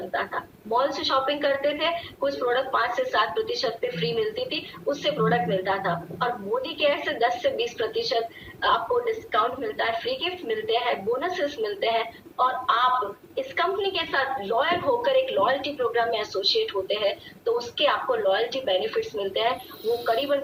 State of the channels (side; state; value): both; identical; correlation 1.00